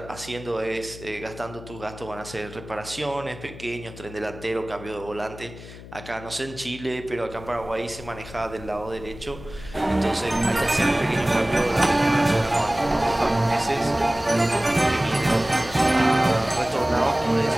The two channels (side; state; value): left; noise; hum, 15 dB below the sound